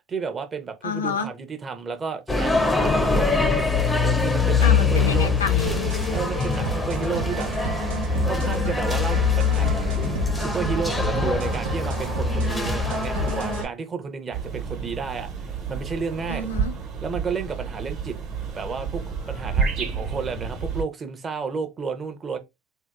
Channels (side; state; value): both; normal; correlation 0.49